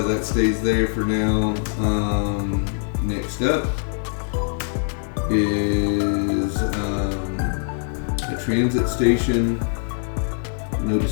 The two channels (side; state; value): right; silent; digital silence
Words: that stays there for now. Next up is a transit station. No